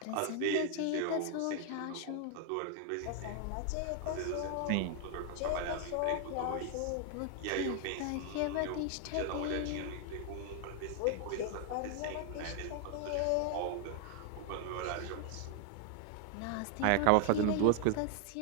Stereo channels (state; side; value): different; both; correlation 0.00